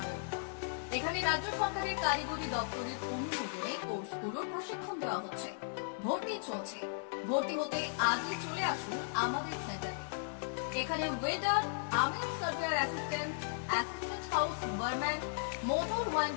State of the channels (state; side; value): silent; right; digital silence